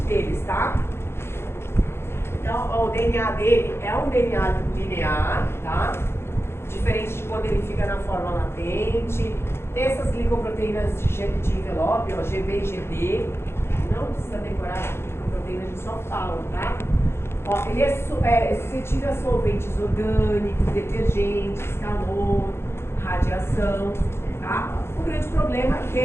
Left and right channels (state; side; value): late; right; 0.12 ms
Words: Deles, tá? Então, ó, o DNA dele é um DNA linear, tá? Diferente de quando ele fica na forma latente. Tem essas glicoproteínas de envelope, ó, GB e GB. Não precisa decorar as glicoproteínas, a gente só fala, tá? Ó, ele é suscetível a solventes orgânicos, detergentes, calor, radiação, tá? O grande problema é que